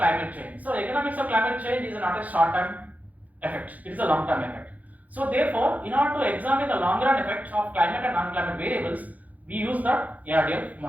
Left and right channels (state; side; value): late; left; 0.077 ms